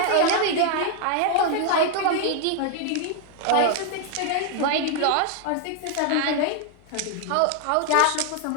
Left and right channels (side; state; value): both; different; correlation 0.00